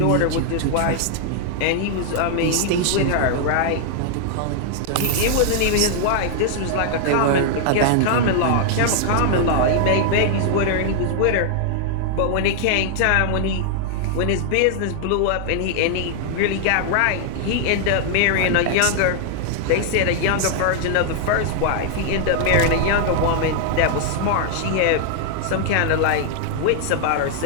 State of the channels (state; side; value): different; both; correlation 0.00